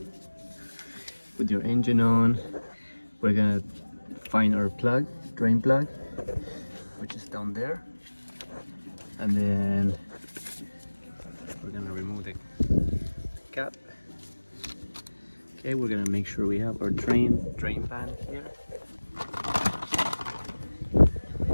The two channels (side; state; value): both; inverted; correlation -1.00